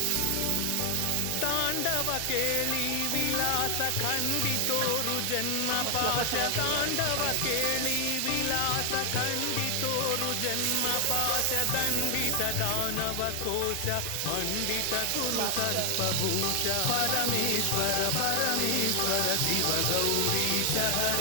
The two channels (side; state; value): both; different; correlation 0.00